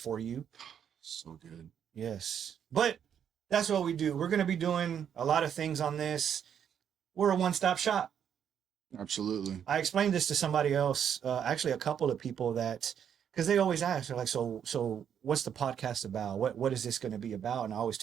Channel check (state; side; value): quieter; left; 8.5 dB